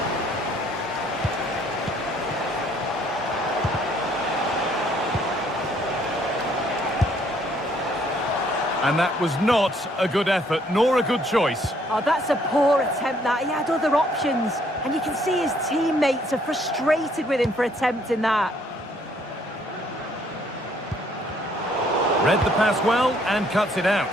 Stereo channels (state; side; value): normal; both; correlation 0.65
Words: And that was not a good effort, nor a good choice. Oh, that's a poor attempt, that. He had other options. And you can see his teammates are frustrated with him for attempting that. Read the pass well and cuts it out.